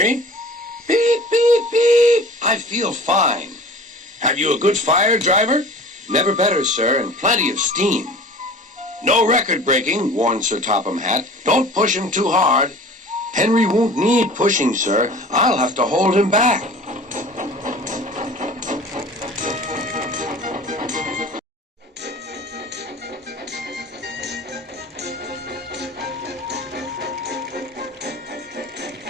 Beep, beep, beep. I feel fine. Have you a good fire, driver? Never better, sir, and plenty of steam. No record breaking, warned Sir Topham Hatt. Don't push him too hard. Henry won't need pushing, sir. I'll have to hold him back.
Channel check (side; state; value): both; normal; correlation 0.43